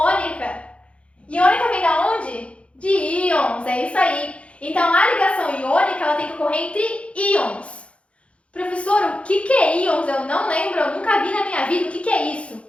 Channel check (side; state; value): right; late; 0.061 ms